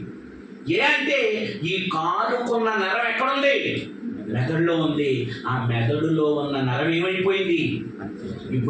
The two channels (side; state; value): both; identical; correlation 1.00